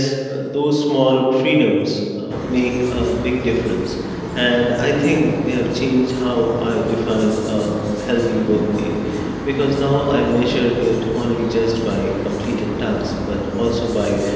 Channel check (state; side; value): identical; both; correlation 1.00